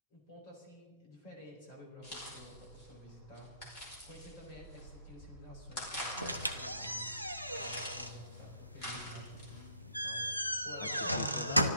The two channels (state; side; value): inverted; both; correlation -0.69